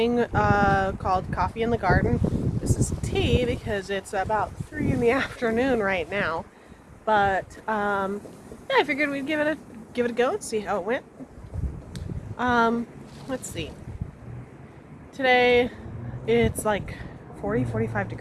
called Coffee in the Garden. This is tea because it's about 3 in the afternoon right now. But yeah, I figured we'd give it a go and see how it went. Let's see. Today it's like 45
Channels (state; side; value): identical; both; correlation 1.00